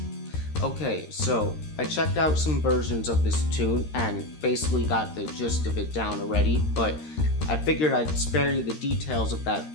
Okay, so I checked out some versions of this tune and basically got the gist of it down already, but I figured I'd spare you the details of that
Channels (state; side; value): late; right; 13 ms